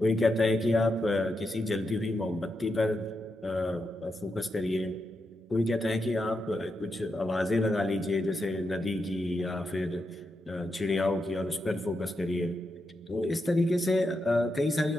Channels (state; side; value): normal; both; correlation 0.85